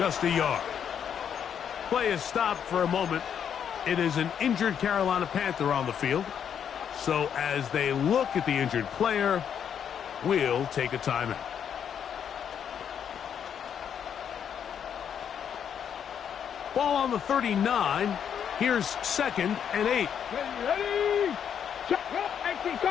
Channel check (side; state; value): right; quieter; 8.3 dB